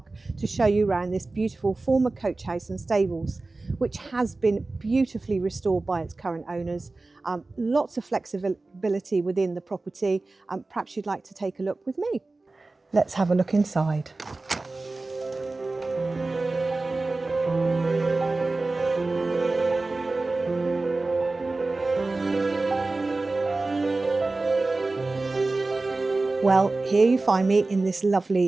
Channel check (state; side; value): quieter; left; 3.3 dB